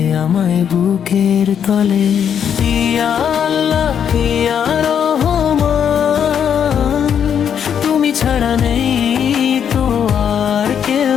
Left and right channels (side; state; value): right; quieter; 8.3 dB